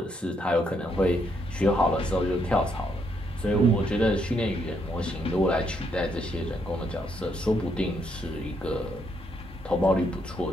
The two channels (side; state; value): both; normal; correlation 0.75